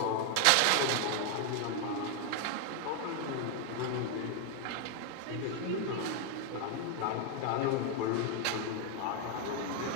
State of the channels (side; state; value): both; different; correlation 0.00